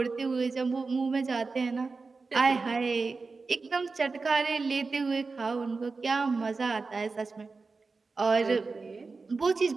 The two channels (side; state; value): left; quieter; 4.2 dB